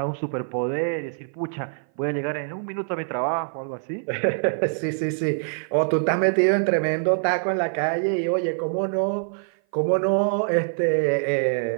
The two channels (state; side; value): silent; left; 57 dB below the other